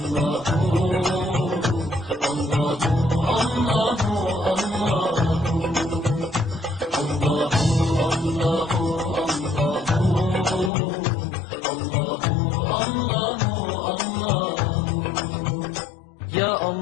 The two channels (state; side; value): drops out; right; at 10.7 s